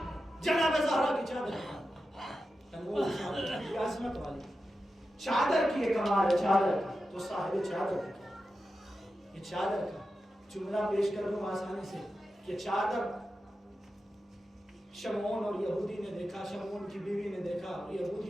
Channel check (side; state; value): both; normal; correlation 0.91